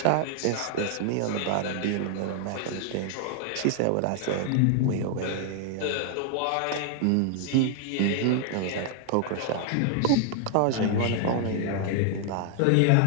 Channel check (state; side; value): different; both; correlation 0.00